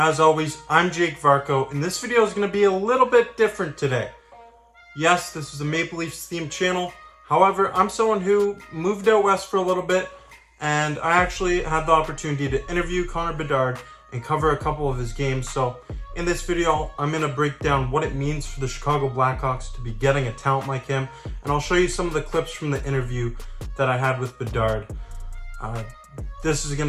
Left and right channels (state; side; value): identical; both; correlation 1.00